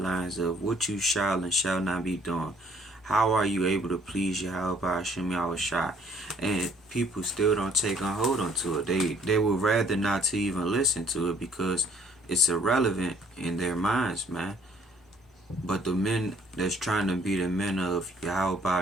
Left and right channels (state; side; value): normal; both; correlation 0.61